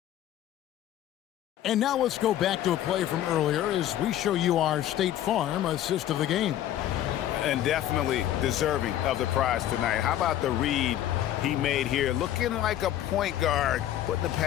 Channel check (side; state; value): right; quieter; 12.3 dB